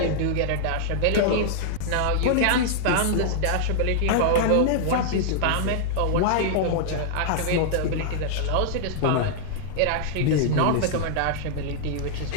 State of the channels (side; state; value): both; different; correlation -0.01